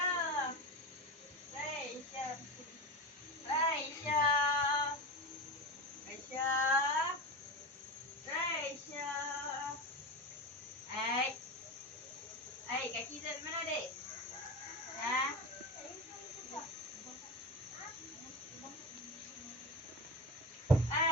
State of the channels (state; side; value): normal; both; correlation 0.23